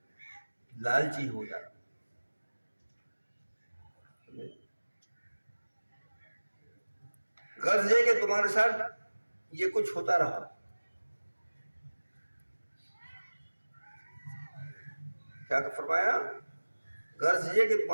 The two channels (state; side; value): inverted; both; correlation -1.00